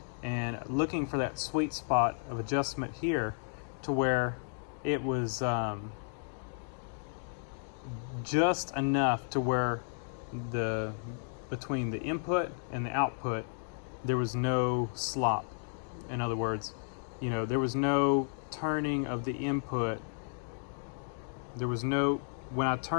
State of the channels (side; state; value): right; silent; digital silence